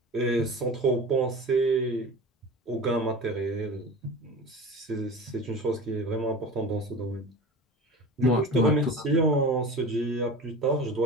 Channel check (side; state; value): both; normal; correlation 0.34